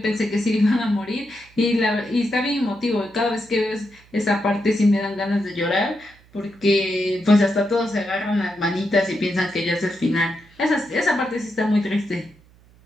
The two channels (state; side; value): noise; right; hum, 28 dB below the sound